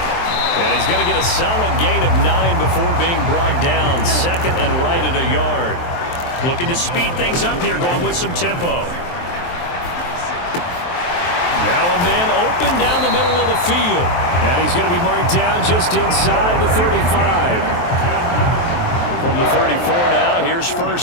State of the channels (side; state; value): right; late; 23 ms